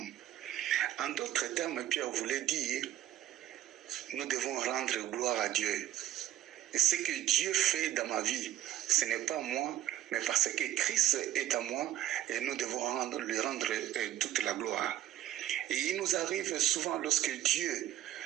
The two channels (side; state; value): left; quieter; 12.7 dB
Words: En d'autres termes, Pierre voulait dire, nous devons rendre gloire à Dieu. Et ce que Dieu fait dans ma vie, ce n'est pas moi, mais parce que Christ est à moi, et nous devons lui rendre toute la gloire. Et il nous arrive souvent lorsque Dieu